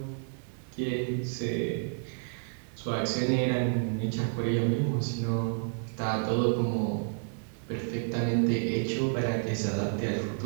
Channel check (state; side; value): silent; left; 58 dB below the other